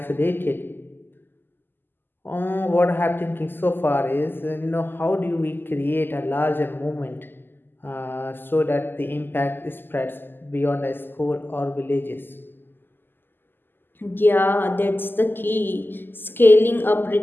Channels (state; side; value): late; right; 0.095 ms